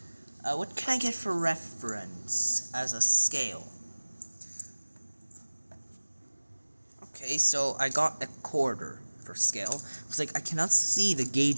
What can I get for reference as a scale? Okay, so I got a quarter for scale. It's like I cannot see the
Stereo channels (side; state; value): both; inverted; correlation -1.00